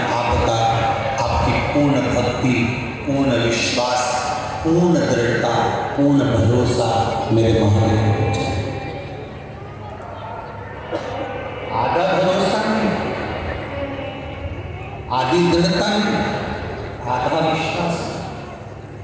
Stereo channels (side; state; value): both; identical; correlation 1.00